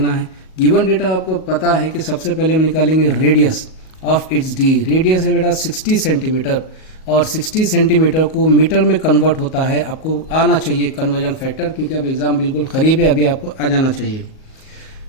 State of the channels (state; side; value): late; right; 38 ms